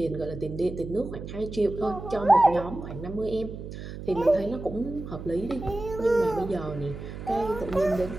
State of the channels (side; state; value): right; noise; hum, 10 dB below the sound